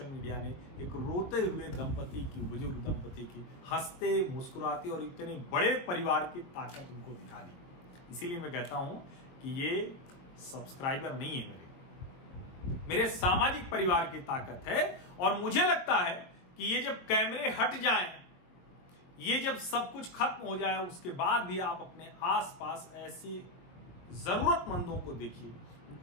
मीडिया ने एक रोते हुए दंपति की, बुजुर्ग दंपति की हंसते मुस्कुराते और इतने बड़े परिवार की ताकत उनको दिखा दी। इसीलिए मैं कहता हूं कि ये सब्सक्राइबर नहीं है, मेरे सामाजिक परिवार की ताकत है। और मुझे लगता है कि ये जब कैमरे हट जाएं, ये जब सब कुछ खत्म हो जाए, उसके बाद भी आप अपने आसपास ऐसी जरूरतमंदों को देखिए,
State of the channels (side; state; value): right; late; 22 ms